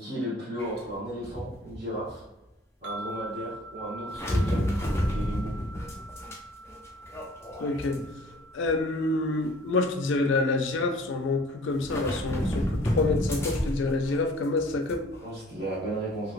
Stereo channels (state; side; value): normal; both; correlation 0.51